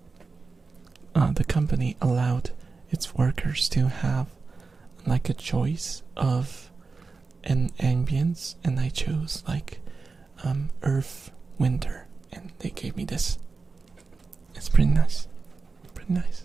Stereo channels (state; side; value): quieter; left; 4.3 dB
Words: The company allowed its workers to have like a choice of an ambience, and I chose like Earth Winter, and they gave me this. It's pretty nice. Pretty